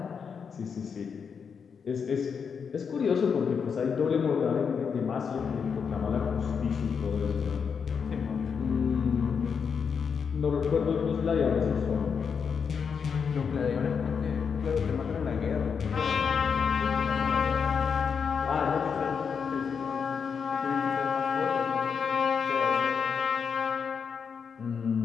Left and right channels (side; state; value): right; quieter; 6.4 dB